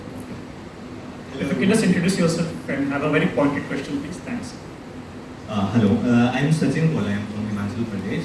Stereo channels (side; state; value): both; identical; correlation 1.00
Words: If you can just introduce yourself and have a very pointed question, please. Thanks. Hello, I'm Sachin Kola. I'm from Himachal